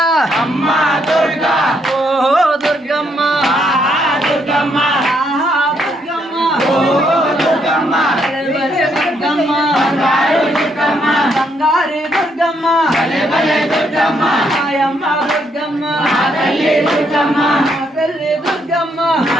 అమ్మ దుర్గా ఓ దుర్గమ్మ ఆహా దుర్గమ్మ ఆహా దుర్గమ్మ ఓ దుర్గమ్మ భలే భలే దుర్గమ్మ బంగారు దుర్గమ్మ బంగారే దుర్గమ్మ భలే భలే దుర్గమ్మ మాయమ్మ దుర్గమ్మ మా తల్లి దుర్గమ్మ మా తల్లి దుర్గమ్మ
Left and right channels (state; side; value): normal; both; correlation 0.74